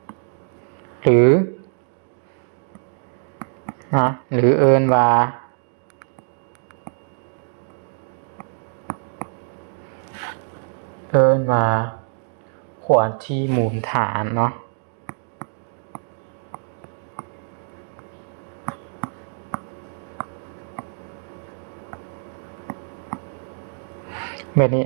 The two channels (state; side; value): silent; left; digital silence